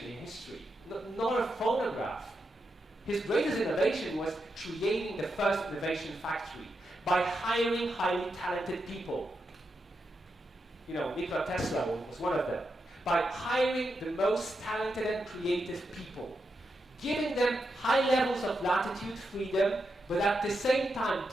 in history, nor a phonograph. His greatest innovation was creating the first innovation factory by hiring highly talented people. You know, Nikola Tesla was one of them. By hiring the most talented and creative people, giving them high levels of latitude freedom, but at the same time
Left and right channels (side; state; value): both; normal; correlation 0.85